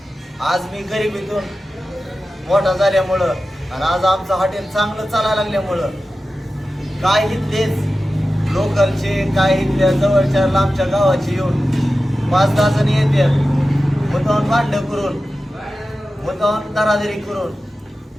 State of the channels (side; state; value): both; normal; correlation 0.94